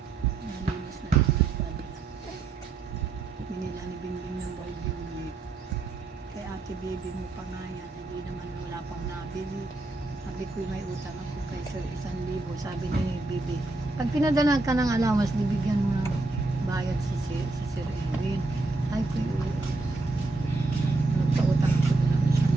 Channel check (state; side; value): quieter; left; 3.2 dB